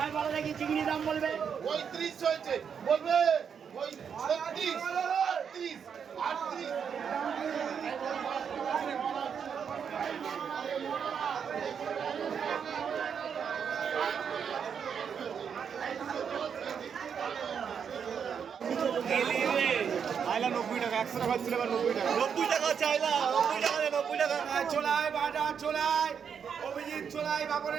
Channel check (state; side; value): quieter; left; 7.2 dB